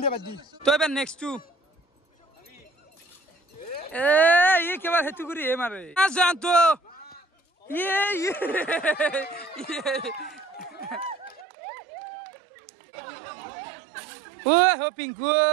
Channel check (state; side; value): drops out; left; at 11.5 s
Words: তো এবার নেক্সট টু এ ये केवल हेतु करी है मारे आ जान तो ये ओ हो पिंकू